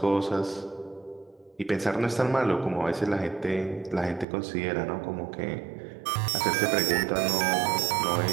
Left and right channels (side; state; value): left; drops out; at 4.2 s